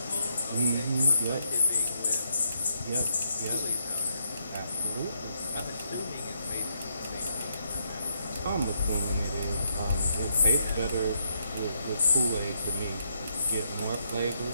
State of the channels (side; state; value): both; inverted; correlation -0.77